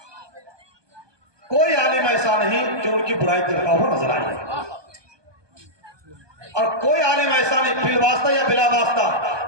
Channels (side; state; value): left; late; 1.2 ms